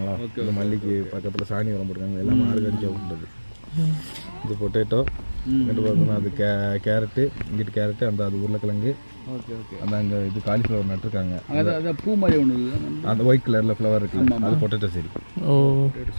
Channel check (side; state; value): both; inverted; correlation -1.00